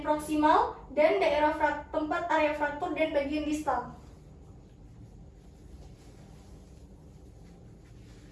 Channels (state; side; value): identical; both; correlation 1.00